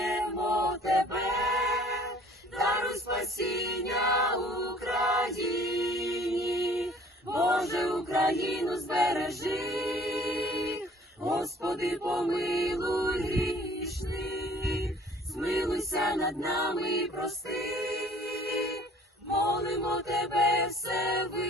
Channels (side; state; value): both; normal; correlation 0.54